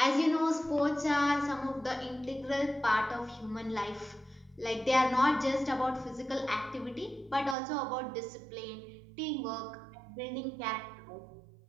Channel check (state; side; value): drops out; left; at 7.6 s